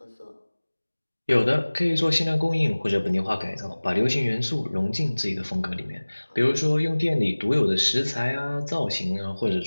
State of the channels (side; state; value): both; inverted; correlation -1.00